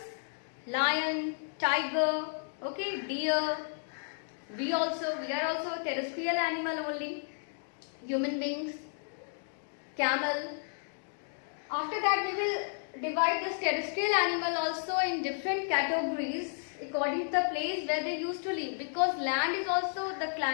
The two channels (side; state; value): right; silent; digital silence